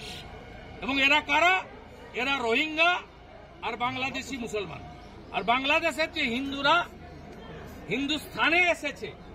এবং এরা কারা? এরা রোহিঙ্গা আর বাংলাদেশি মুসলমান। আর বাংলাদেশের যে হিন্দুরা হিন্দুস্থানে এসেছে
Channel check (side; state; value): both; identical; correlation 1.00